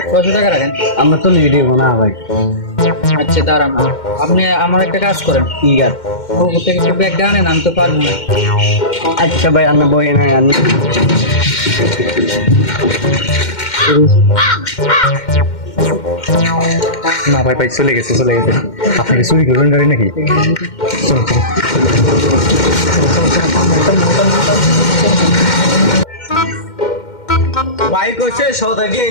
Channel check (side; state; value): right; late; 2.1 ms